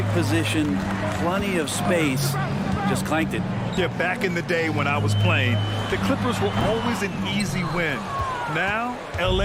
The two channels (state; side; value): identical; both; correlation 1.00